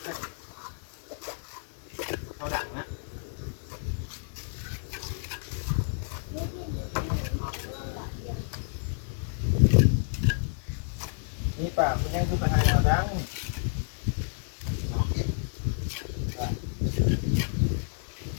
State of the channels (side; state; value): right; silent; 56 dB below the other